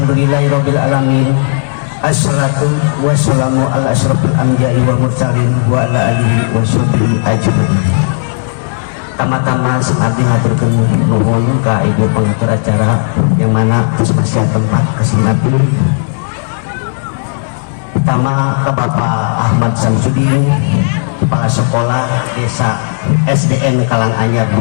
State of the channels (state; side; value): silent; right; digital silence